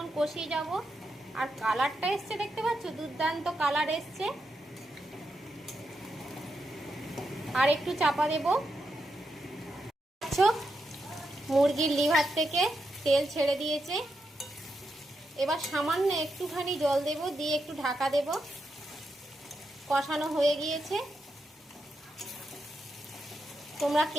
কষিয়ে যাব। আর কালারটা এসছে, দেখতে পাচ্ছ, দুর্দান্ত কালার এসছে। আর একটু চাপা দেব। মুরগির লিভার থেকে তেল ছেড়ে দিয়েছে, এবার সামান্য একটুখানি জল দেব, দিয়ে একটু ঢাকা দেব। কষানো হয়ে গিয়েছে। তোমরা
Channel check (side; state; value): both; normal; correlation 0.85